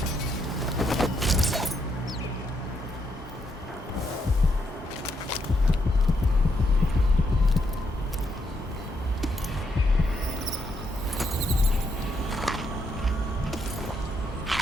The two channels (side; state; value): both; normal; correlation 0.78